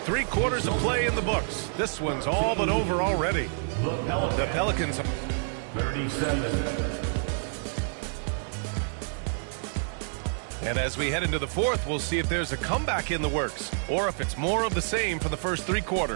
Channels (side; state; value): left; silent; digital silence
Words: quarters of play in the books. This one's all but over already. The Pelicans. 37. And as we head into the fourth, we'll see if there's a comeback in the works or if it's more of the same for the first 3